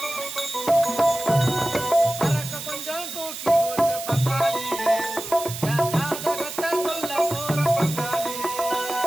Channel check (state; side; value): noise; right; hiss, 8 dB below the sound